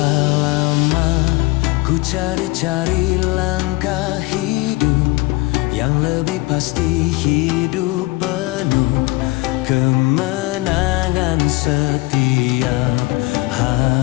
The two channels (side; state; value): right; quieter; 22.4 dB